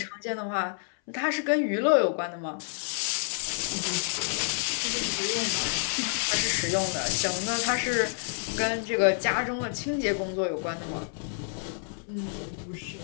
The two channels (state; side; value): silent; right; 59 dB below the other